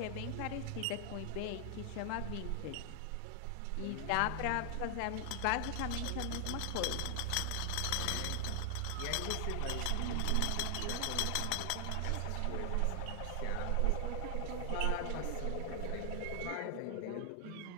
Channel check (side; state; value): both; different; correlation 0.00